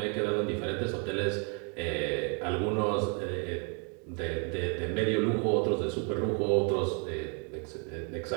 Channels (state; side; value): quieter; left; 38.1 dB